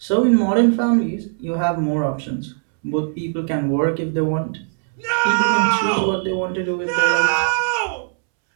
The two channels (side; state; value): left; silent; 66 dB below the other